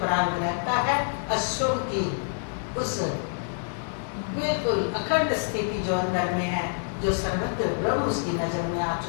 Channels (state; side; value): silent; right; digital silence